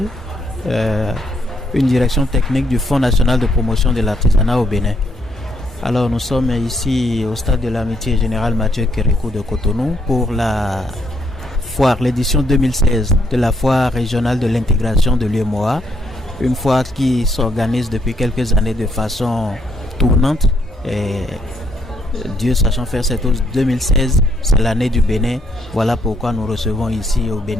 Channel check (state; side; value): normal; both; correlation 0.73